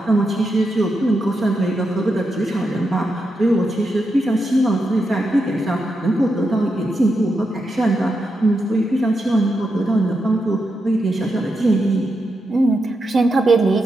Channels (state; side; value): normal; both; correlation 0.85